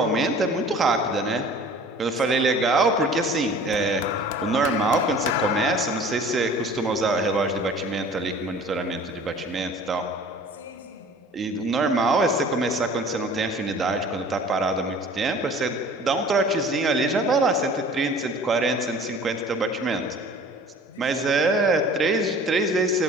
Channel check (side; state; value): both; normal; correlation 0.46